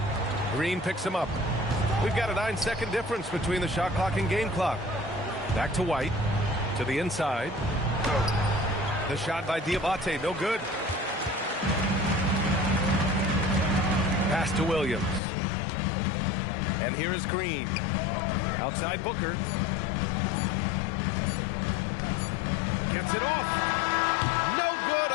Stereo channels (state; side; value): drops out; right; at 15.2 s